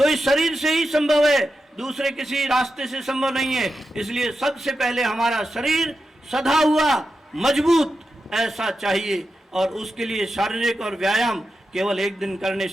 इस शरीर से ही संभव है, दूसरे किसी रास्ते से संभव नहीं है। इसलिए सबसे पहले हमारा शरीर सधा हुआ, मजबूत ऐसा चाहिए, और उसके लिए शारीरिक और व्यायाम केवल एक दिन करने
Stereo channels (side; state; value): both; normal; correlation 0.89